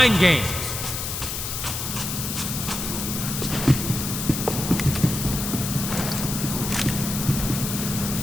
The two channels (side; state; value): left; noise; hiss, 4 dB below the sound